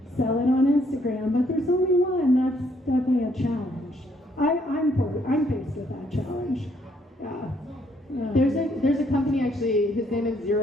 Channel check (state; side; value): normal; both; correlation 0.69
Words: sell it on Instagram, but there's only one. That's definitely a challenge. I'm faced with that challenge. Yeah. There's a company actually, his name is